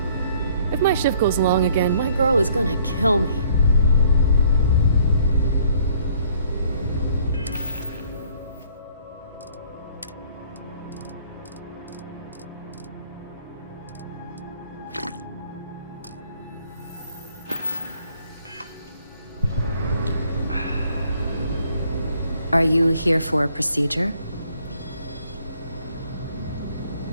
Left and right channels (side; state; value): both; inverted; correlation -0.61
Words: If my shift goes long again, my girl is gonna kill me. Are you here for a procedure?